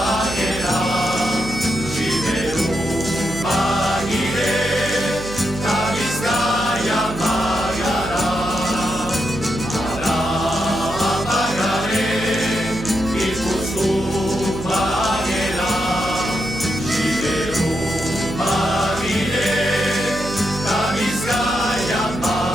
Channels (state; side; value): noise; right; hum, 11 dB below the sound